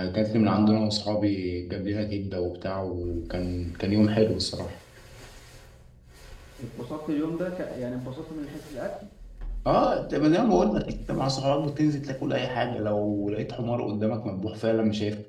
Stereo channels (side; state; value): both; identical; correlation 1.00